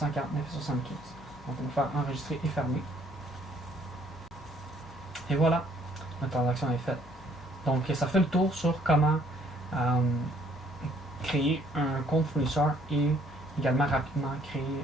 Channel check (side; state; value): both; normal; correlation 0.63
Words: Donc on va faire enregistrer et fermer. Et voilà, notre transaction est faite. Donc ça fait le tour sur comment créer un compte fournisseur et également rapidement